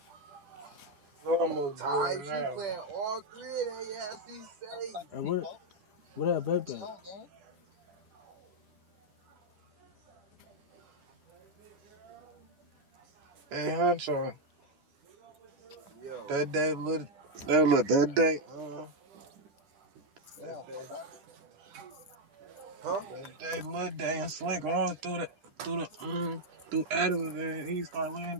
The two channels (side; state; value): left; late; 10 ms